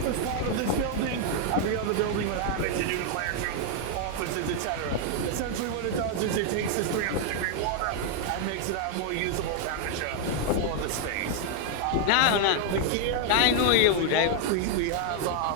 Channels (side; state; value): both; different; correlation 0.00